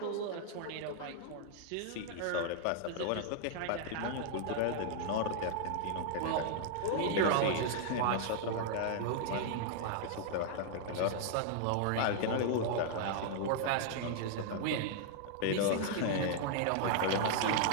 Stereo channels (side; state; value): both; different; correlation -0.01